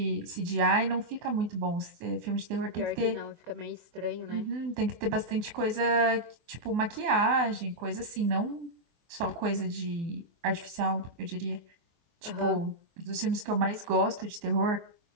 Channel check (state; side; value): late; left; 24 ms